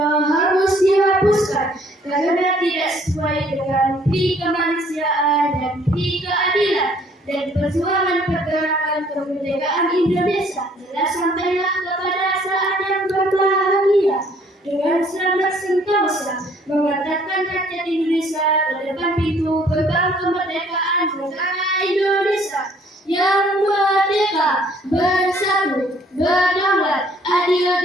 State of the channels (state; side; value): normal; both; correlation 0.61